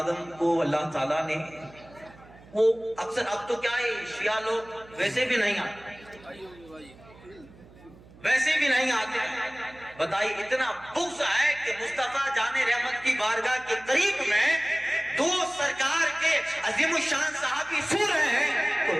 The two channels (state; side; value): noise; right; hum, 23 dB below the sound